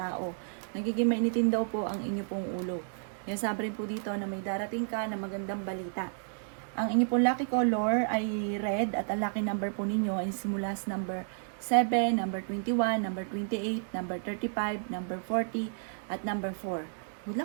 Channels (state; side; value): silent; left; digital silence